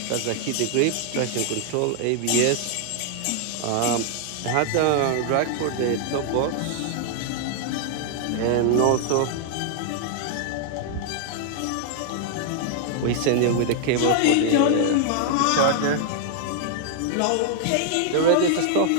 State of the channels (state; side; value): different; both; correlation -0.01